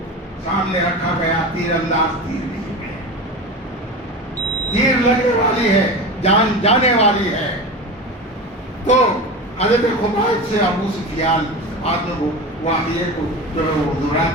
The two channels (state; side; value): normal; both; correlation 0.27